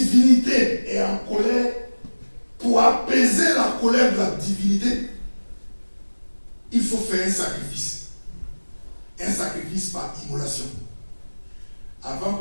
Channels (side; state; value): both; inverted; correlation -1.00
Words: est en colère, pour apaiser la colère de la divinité, il faut faire un sacrifice. Un sacrifice par immolation. Avant